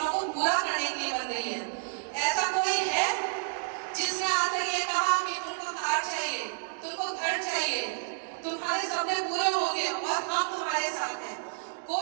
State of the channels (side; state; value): left; silent; digital silence